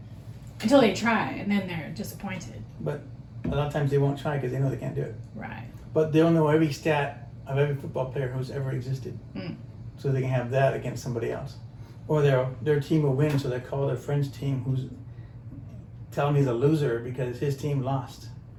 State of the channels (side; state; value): both; identical; correlation 1.00